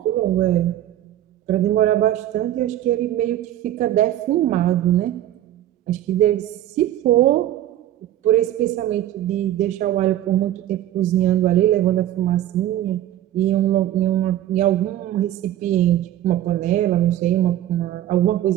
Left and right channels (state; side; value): quieter; left; 12.7 dB